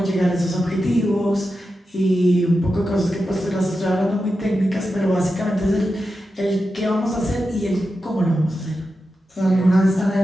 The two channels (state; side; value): normal; both; correlation 0.90